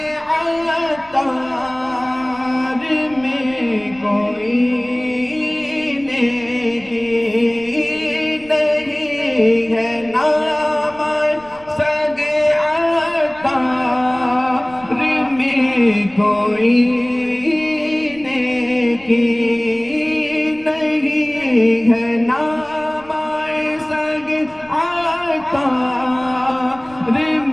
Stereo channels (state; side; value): noise; right; rumble, 24 dB below the sound